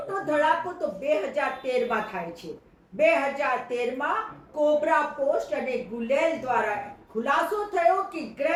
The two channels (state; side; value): identical; both; correlation 1.00